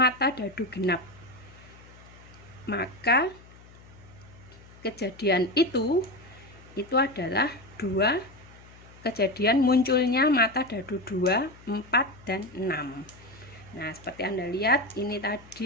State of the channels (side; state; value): left; noise; hum, 22 dB below the sound